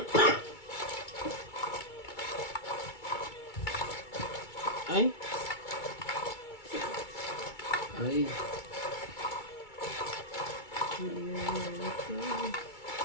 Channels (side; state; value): right; late; 2.3 ms